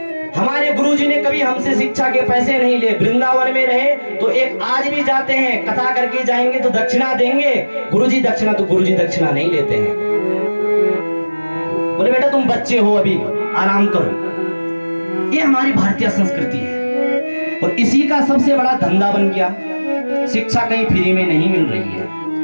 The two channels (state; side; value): inverted; both; correlation -1.00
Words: हमारे गुरुजी ने कभी हमसे शिक्षा के पैसे नहीं लिए। वृंदावन में रहे तो एक आज भी जाते हैं, कथा करके जाएंगे तो दक्षिणा देंगे। गुरुजी दक्षिणा, तो गुरुजी दक्षिणा नहीं लेते हैं। बोले बेटा तुम बच्चे हो, अभी आराम करो। ये हमारी भारतीय संस्कृति है और इसी का सबसे बड़ा धंधा बन गया। शिक्षा कहीं फ्री में नहीं मिल रही